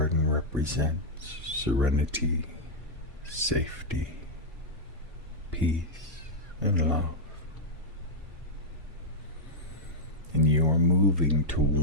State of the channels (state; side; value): normal; both; correlation -0.04